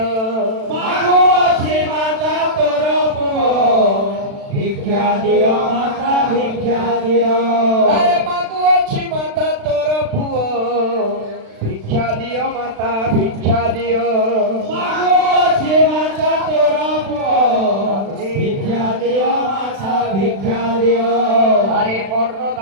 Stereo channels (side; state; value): left; late; 36 ms